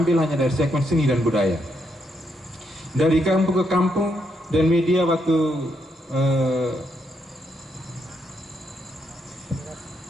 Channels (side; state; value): both; normal; correlation 0.78